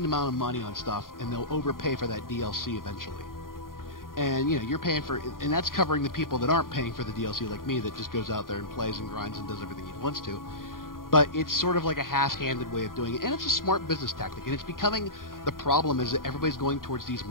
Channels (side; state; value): right; late; 0.91 ms